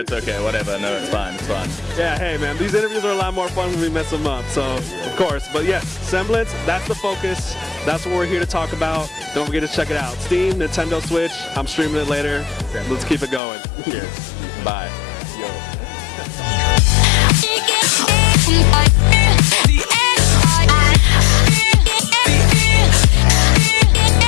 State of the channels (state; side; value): drops out; right; at 13.4 s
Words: okay, whatever. No, it's fine. Yeah, hey man, these interviews are a lot more fun when we mess them up, so of course. But yes, Assemblance, that's the focus. That's what we're here to talk about. Don't forget to check it out. Steam, Nintendo Switch, I'm streaming it later. Let's keep it going. Cheers. Bye. Yo.